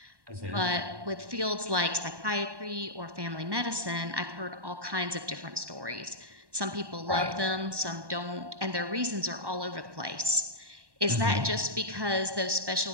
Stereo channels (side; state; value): left; late; 1.1 ms